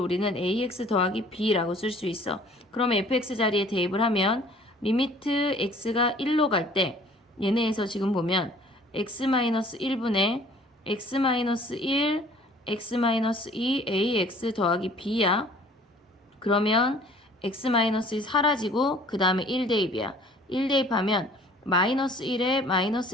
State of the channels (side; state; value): both; normal; correlation 0.53